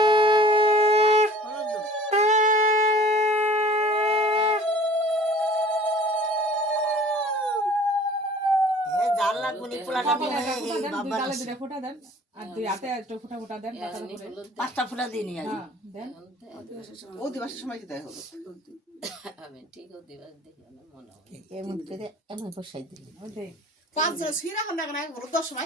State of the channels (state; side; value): normal; both; correlation 0.48